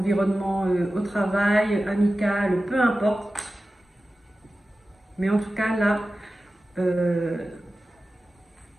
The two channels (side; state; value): both; normal; correlation 0.95